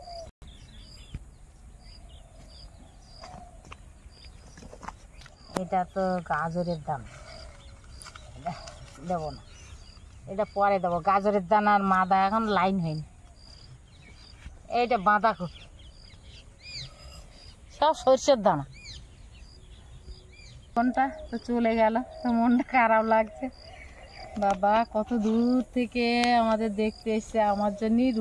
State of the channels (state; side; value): identical; both; correlation 1.00